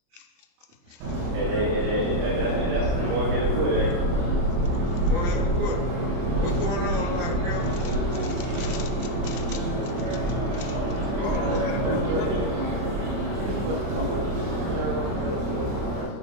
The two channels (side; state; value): left; late; 29 ms